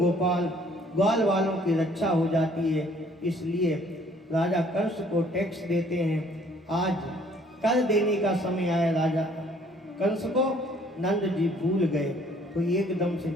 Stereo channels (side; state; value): both; normal; correlation 0.60